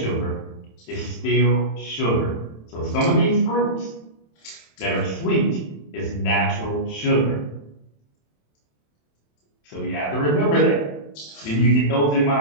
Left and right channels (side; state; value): right; late; 27 ms